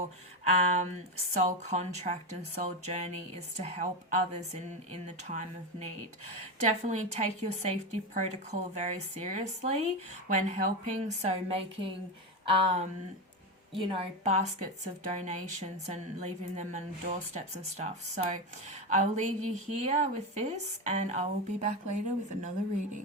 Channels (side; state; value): both; normal; correlation 0.15